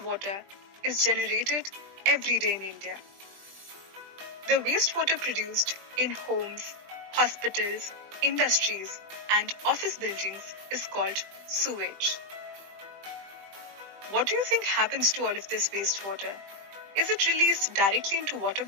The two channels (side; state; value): left; late; 20 ms